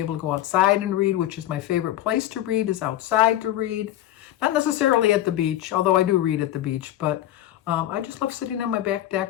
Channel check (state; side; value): quieter; right; 13.3 dB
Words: able to go outside and read, which is my favorite place to read, is outside to read. Not necessarily at the beach, although I do read at the beach. But I just love sitting on my back